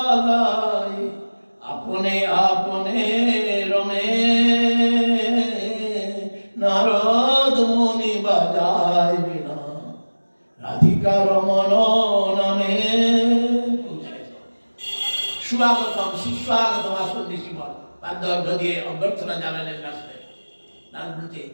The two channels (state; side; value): inverted; both; correlation -1.00